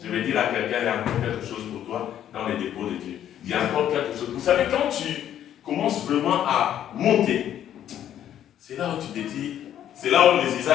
Je vais dire à quelqu'un, il y a encore quelque chose pour toi dans les dépôts de Dieu. Il y a encore quelque chose. Vous savez, quand tu commences vraiment à monter, c'est là où tu te dis, c'est là où les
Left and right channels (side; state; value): right; quieter; 10.8 dB